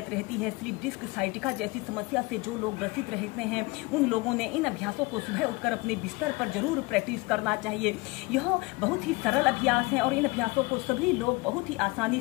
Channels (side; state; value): right; quieter; 24.4 dB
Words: रहती है, स्लिप डिस्क, साइटिका जैसी समस्या से जो लोग ग्रसित रहते हैं, उन लोगों ने इन अभ्यासों को सुबह उठकर अपने बिस्तर पर जरूर प्रैक्टिस करना चाहिए। यह बहुत ही सरल अभ्यास है और इन अभ्यासों को सभी लोग बहुत ही आसानी